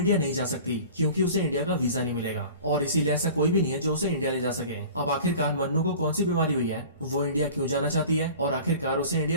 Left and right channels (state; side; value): inverted; both; correlation -0.42